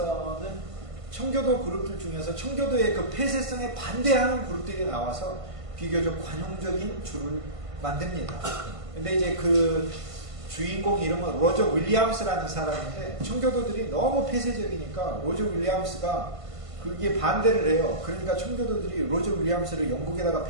청교도 그룹들 중에서 청교도의 그 폐쇄성에 반대하는 그룹들이 나와서 비교적 관용적인 주를 만듭니다. 근데 이제 그 주인공 이름은 로저 윌리엄스라는 사람인데 청교도들이 너무 폐쇄적이니까 로저 윌리엄스가 그게 반대를 해요. 그러니까 청교도들이 로저 윌리엄스를 영국에다가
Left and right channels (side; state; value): left; late; 1.5 ms